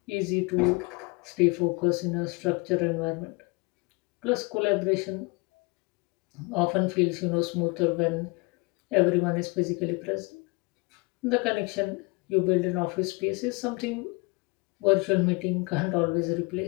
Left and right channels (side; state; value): right; quieter; 27.8 dB